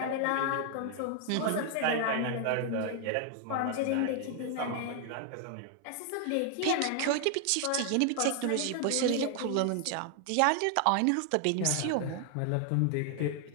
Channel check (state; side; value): different; both; correlation 0.00